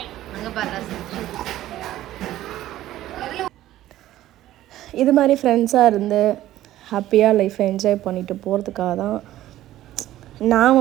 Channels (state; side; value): quieter; left; 14.1 dB